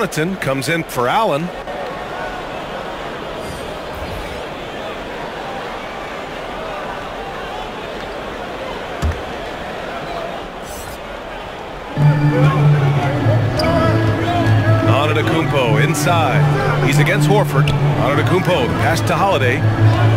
comes in for Allen. Antetokounmpo inside. He's against Horford. Antetokounmpo, the pass to Holiday.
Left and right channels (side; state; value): both; identical; correlation 1.00